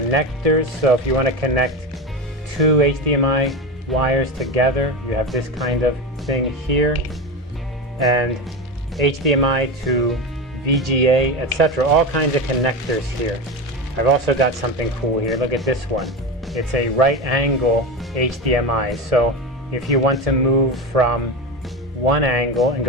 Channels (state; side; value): normal; both; correlation 0.21